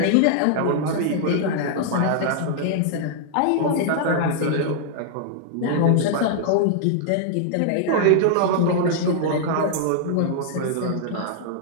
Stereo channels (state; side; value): different; both; correlation -0.01